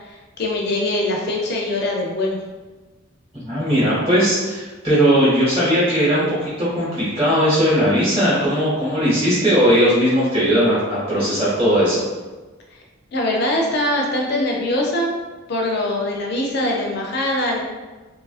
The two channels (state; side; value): normal; both; correlation 0.37